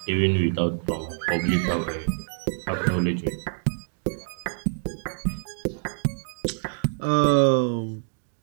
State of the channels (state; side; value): silent; left; digital silence